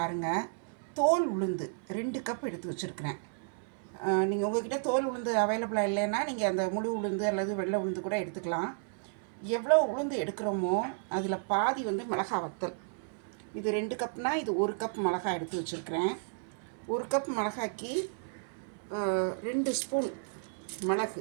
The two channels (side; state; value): left; silent; 56 dB below the other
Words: தோல் உளுந்து 2 கப் எடுத்து வச்சுருக்கிறேன். நீங்கள் உங்கள்கிட்ட தோல் உளுந்து அவைலபிளாக இல்லைன்னா நீங்கள் அந்த முழு உளுந்து அல்லது வெள்ளை உளுந்து கூட எடுத்துக்கலாம். எவ்வளோ உளுந்து எடுக்கிறோமோ அதில் பாதி மிளகாய் வத்தல். இது 2 கப்னால் இது 1 கப் மிளகாய் எடுத்து வச்சுருக்கிறேன். 1 கப் மிளகாய்க்கு 2 ஸ்பூன்